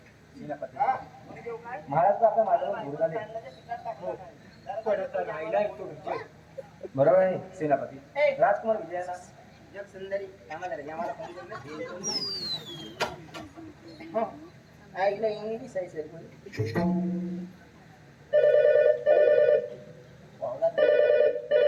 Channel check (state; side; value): identical; both; correlation 1.00